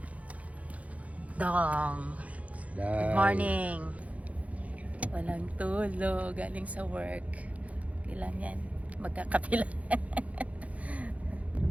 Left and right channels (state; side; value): late; left; 0.067 ms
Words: Dong. Good morning. Walang tulog, galing sa work. Kailan yan? Magkakapila.